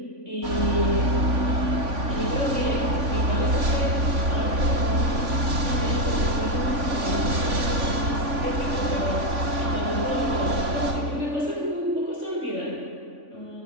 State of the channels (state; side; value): late; left; 3.5 ms